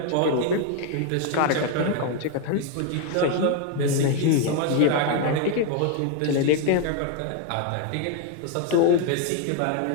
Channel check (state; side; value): different; both; correlation 0.01